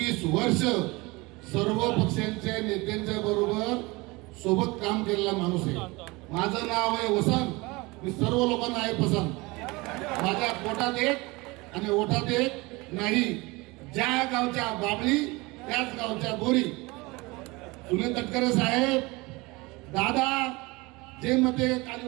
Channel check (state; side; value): quieter; left; 23.9 dB